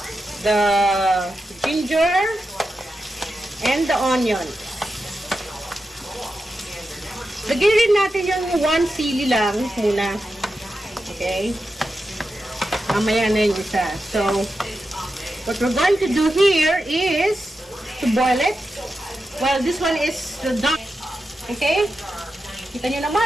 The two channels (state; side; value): normal; both; correlation 0.89